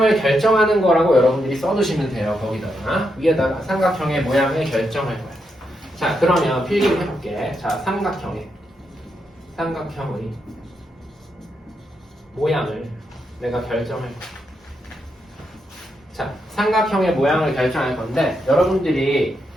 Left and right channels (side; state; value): both; normal; correlation 0.82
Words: 결정하는 거라고 여러분들이 써두시면 돼요. 거기다가 위에다가 삼각형의 모양을 결정할 거야. 자, 그러면 필기를 해볼게. 자, 삼각형의 모양을 내가 결정할 거야. 자, 삼각형의 모양을 결정할 건데 여러분들이